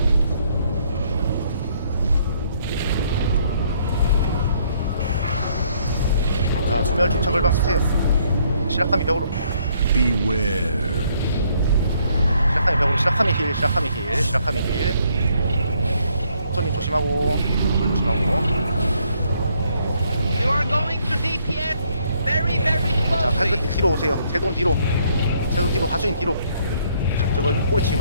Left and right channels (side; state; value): both; inverted; correlation -0.68